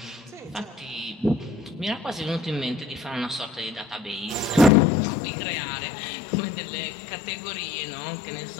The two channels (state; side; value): drops out; right; at 4.7 s